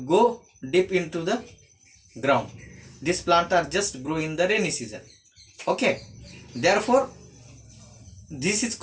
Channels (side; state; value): both; identical; correlation 1.00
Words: go deep into the ground. These plants are just grow in the rainy season. Okay, therefore this is